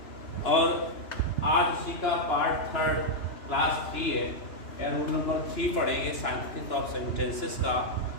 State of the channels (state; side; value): late; right; 2.9 ms